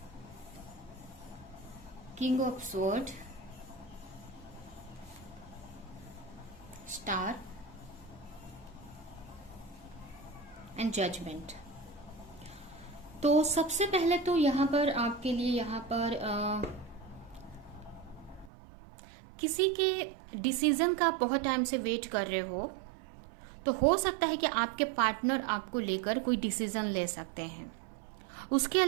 king of sword, star and judgement. तो सबसे पहले तो यहाँ पर आपके लिए यहाँ पर किसी के डिसीजन का आप बहुत टाइम से वेट कर रहे हो, तो हो सकता है कि आपके पार्टनर आपको लेकर कोई डिसीजन ले सकते हैं। उसके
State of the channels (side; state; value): left; drops out; at 18.5 s